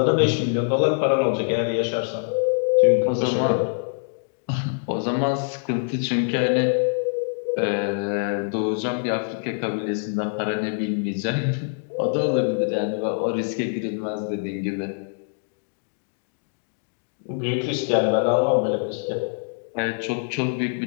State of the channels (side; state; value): right; silent; digital silence